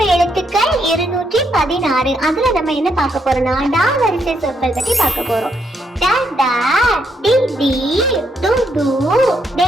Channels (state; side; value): normal; both; correlation 0.76